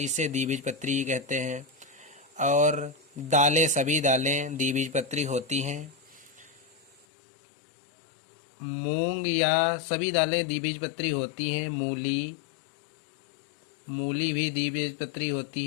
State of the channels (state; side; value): drops out; right; at 7.1 s